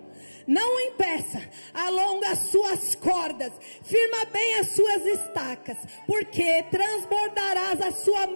Não impeça, alonga as suas cordas, firma bem as suas estacas, porque transbordarás a sua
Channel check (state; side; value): inverted; both; correlation -1.00